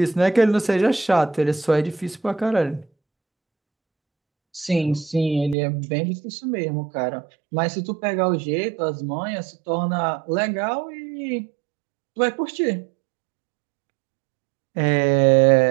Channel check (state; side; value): drops out; left; at 5.6 s